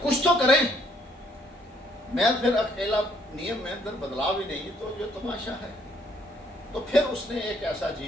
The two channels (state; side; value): normal; both; correlation 0.66